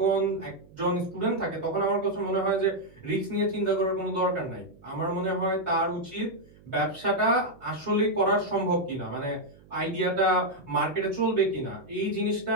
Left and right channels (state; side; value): noise; right; hum, 25 dB below the sound